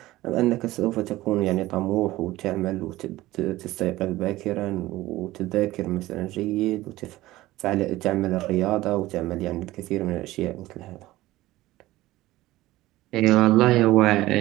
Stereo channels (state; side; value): quieter; left; 17.2 dB